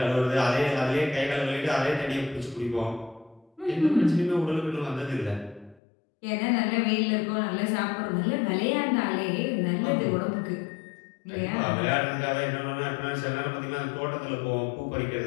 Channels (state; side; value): drops out; right; at 5.8 s